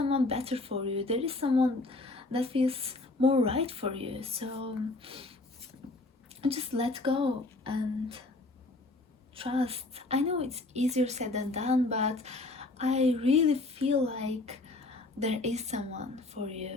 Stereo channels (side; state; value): right; quieter; 3.0 dB